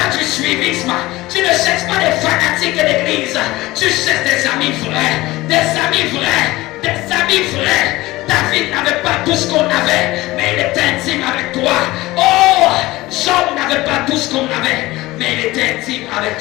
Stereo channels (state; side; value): quieter; right; 19.0 dB